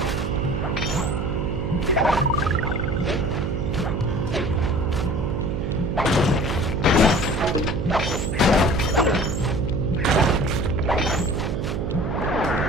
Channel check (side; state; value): right; noise; hum, 2 dB below the sound